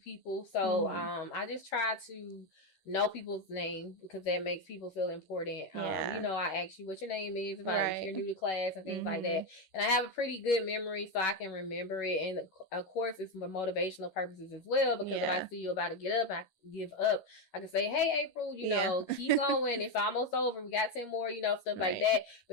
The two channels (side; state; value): right; late; 11 ms